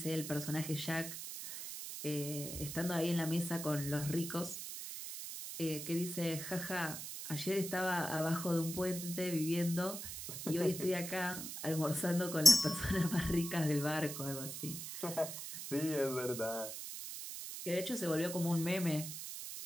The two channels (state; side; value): noise; right; hiss, 7 dB below the sound